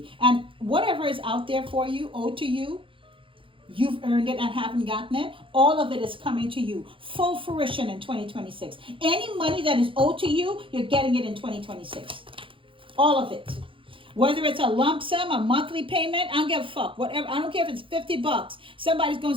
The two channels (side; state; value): left; late; 0.25 ms